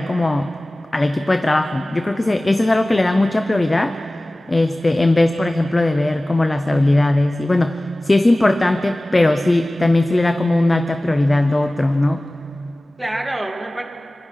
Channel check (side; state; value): both; normal; correlation 0.98